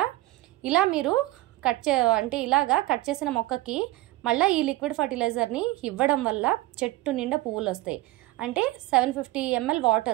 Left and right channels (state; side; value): quieter; left; 18.3 dB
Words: ఇలా మీరు ఇలాగా కట్ చేసిన మొక్కకి మళ్ళీ ఈ లిక్విడ్ ఫర్టిలైజర్ని ఇవ్వడం వల్ల చెట్టు నిండా పువ్వులు వస్తాయి. అంటే 750 ml